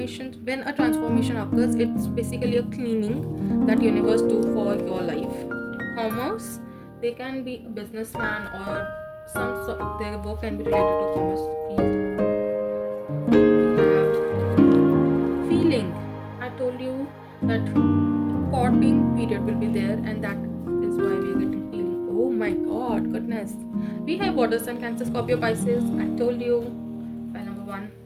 when a transformation occurs, it's basically a cleaning that universe do for your life. Commerce. They can be a businessman or some sort. Their work can be related to commerce field. Feeling. I told you that courting period will be there, and that is why we are getting feeling. Oh my god, goodness. We have water sign, Cancer, Scorpio, Pisces. I told you. File number 1.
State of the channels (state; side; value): identical; both; correlation 1.00